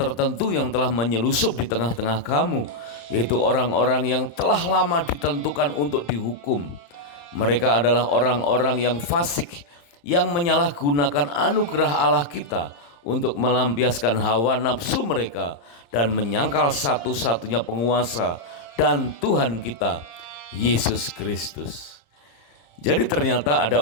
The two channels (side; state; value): right; late; 35 ms